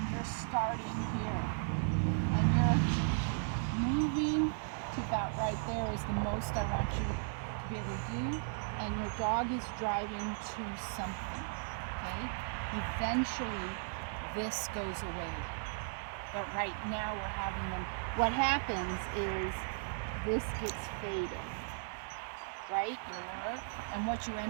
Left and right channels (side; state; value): left; silent; digital silence